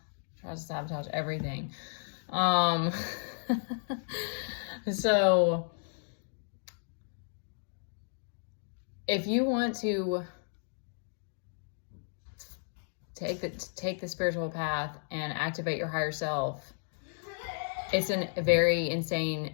tries to sabotage everything. So if you want to take the spiritual path and activate your higher self, it's a very insane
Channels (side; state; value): right; silent; digital silence